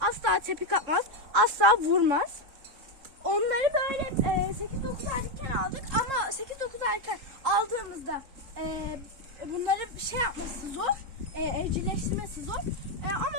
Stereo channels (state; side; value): late; left; 3.7 ms